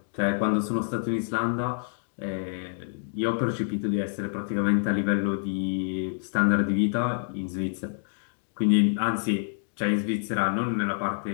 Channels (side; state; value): right; silent; digital silence